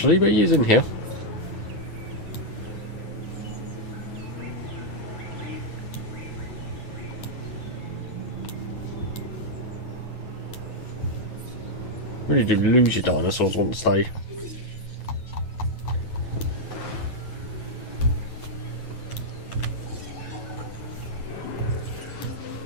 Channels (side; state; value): right; late; 9.3 ms